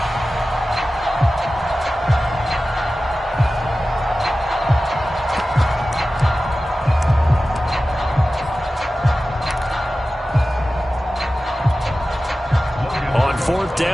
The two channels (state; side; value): normal; both; correlation 0.95